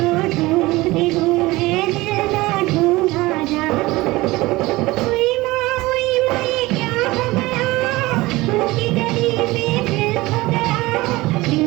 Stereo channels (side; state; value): left; quieter; 20.2 dB